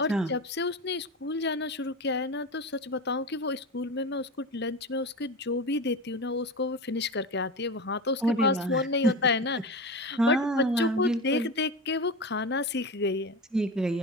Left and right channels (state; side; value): normal; both; correlation 0.25